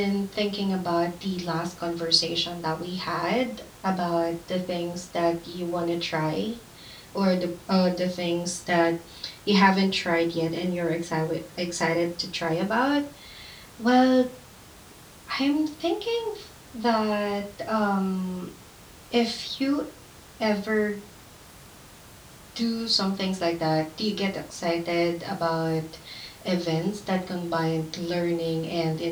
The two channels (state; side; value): identical; both; correlation 1.00